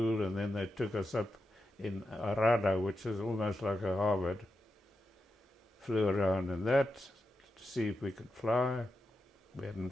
and then they took us up in Arada, which is almost like a Harvard. Flew around in that to see if we could fly. We hadn't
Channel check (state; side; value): normal; both; correlation 0.88